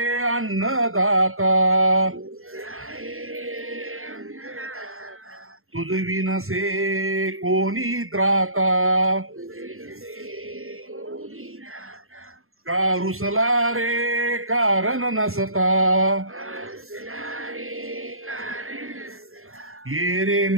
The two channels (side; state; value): left; late; 0.61 ms